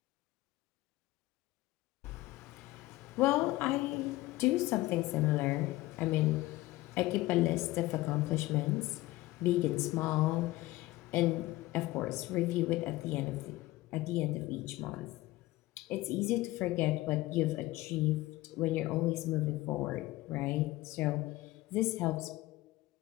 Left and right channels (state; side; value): quieter; right; 18.3 dB